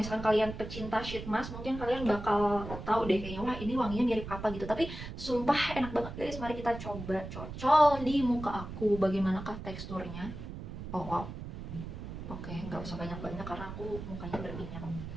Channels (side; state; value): right; noise; rumble, 9 dB below the sound